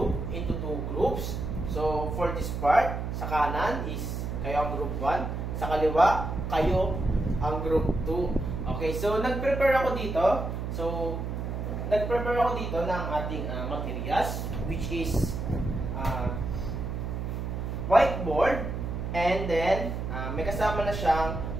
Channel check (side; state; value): right; noise; hum, 4 dB below the sound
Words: into two groups. So for this part, sa kanan is kayo ang group 1, sa kaliwa, kayo ang group 2. Okay, so nag-prepare ako dito. So, nag-prepare ako dito ng ating materials, which is whiteboard, and then may kasama na siyang